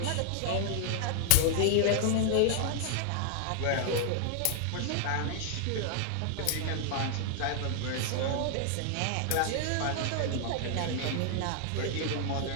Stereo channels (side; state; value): both; different; correlation 0.00